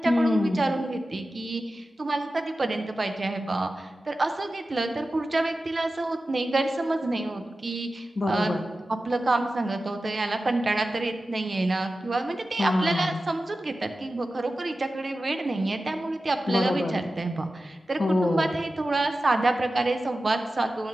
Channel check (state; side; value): normal; both; correlation 0.94